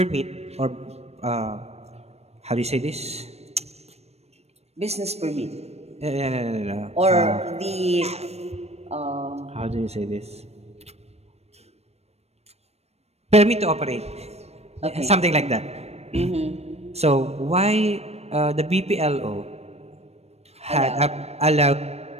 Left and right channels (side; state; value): left; late; 0.31 ms